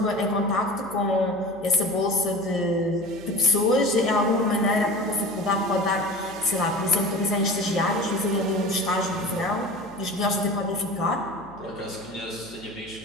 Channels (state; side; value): noise; right; hum, 22 dB below the sound